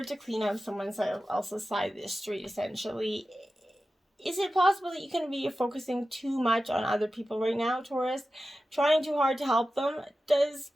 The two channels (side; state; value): both; normal; correlation 0.93